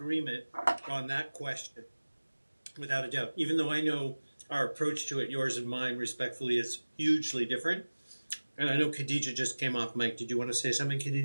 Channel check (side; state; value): both; inverted; correlation -1.00